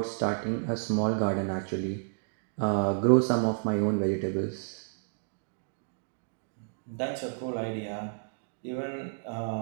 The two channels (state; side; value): silent; left; digital silence